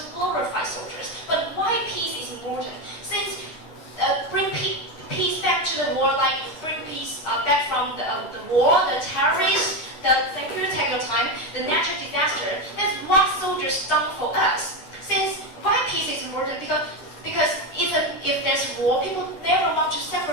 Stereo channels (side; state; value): right; late; 9.8 ms